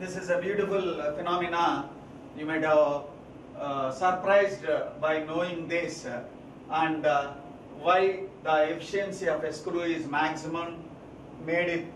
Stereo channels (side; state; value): both; identical; correlation 1.00